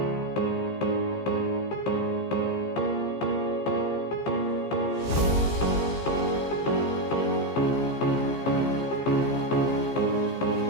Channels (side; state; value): right; late; 15 ms